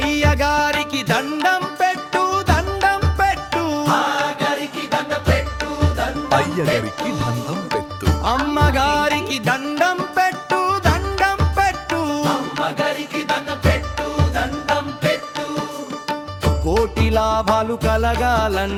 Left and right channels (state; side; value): identical; both; correlation 1.00